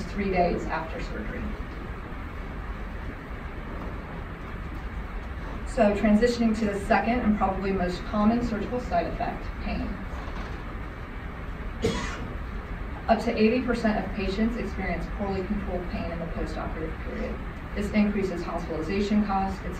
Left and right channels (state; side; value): identical; both; correlation 1.00